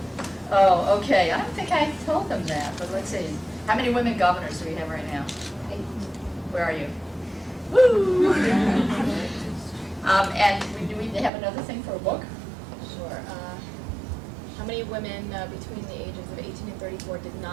Oh, okay. I don't think I told them that, but let's see. How many women governors do we have right now? 8. Where are you? Woo! And do we have another thing for a book? Sure. How many women between the ages of 18 and 34 did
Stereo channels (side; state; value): left; drops out; at 11.3 s